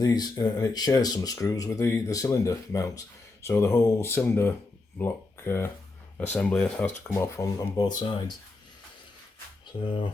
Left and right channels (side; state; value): right; quieter; 3.4 dB